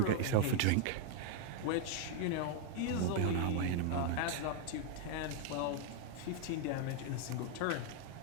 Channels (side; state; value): both; different; correlation 0.01